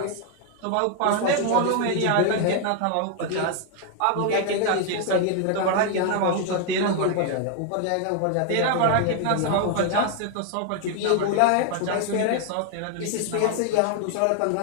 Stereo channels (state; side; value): different; both; correlation 0.00